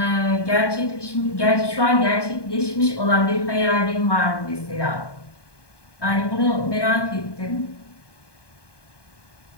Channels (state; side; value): late; right; 1.2 ms